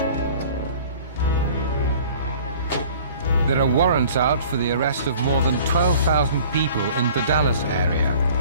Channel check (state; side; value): inverted; both; correlation -0.48